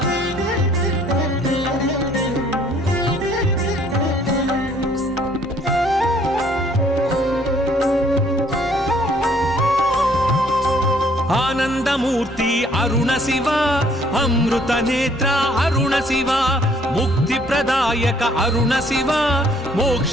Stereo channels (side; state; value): both; normal; correlation 0.62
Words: आनंदमूर्ति अरुण शिव अमृत नेत्र अरुण शिव मुक्ति प्रदायक अरुण शिव